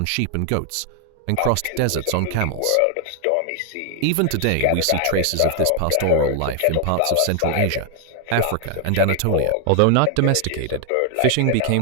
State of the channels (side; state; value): both; different; correlation 0.00